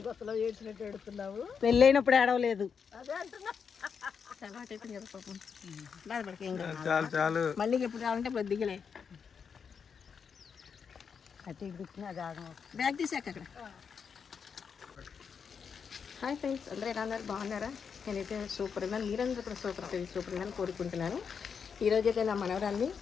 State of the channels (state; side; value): quieter; right; 6.4 dB